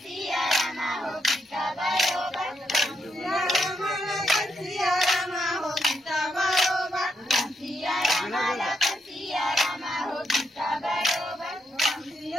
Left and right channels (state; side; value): normal; both; correlation 0.79